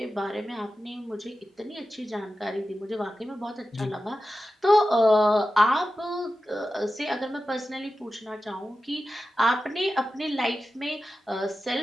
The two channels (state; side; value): normal; both; correlation 0.93